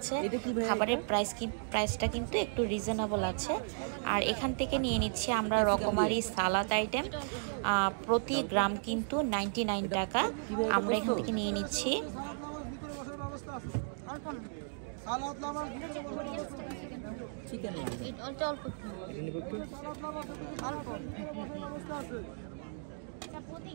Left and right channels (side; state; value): left; silent; digital silence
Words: খাবারের প্রাইসটা কিন্তু একটু রিজনেবল আছে। আর এখান থেকে নিয়ে নিচ্ছি আমরা রকমারি সালাদ আইটেম, প্রতি গ্রাম কিন্তু 99 টাকা। আমরা এখান থেকে নিয়ে নিচ্ছি। চিকেন